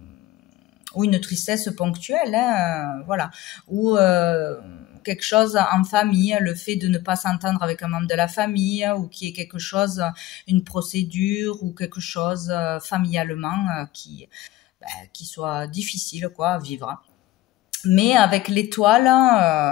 ou une tristesse ponctuelle, hein, voilà, ou quelque chose en famille, le fait de ne pas s'entendre avec un membre de la famille, ou qu'il y ait quelque chose, une procédure, ou quelque chose familialement qui soit difficile quoi, à vivre. Mais avec l'étoile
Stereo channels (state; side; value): quieter; right; 15.9 dB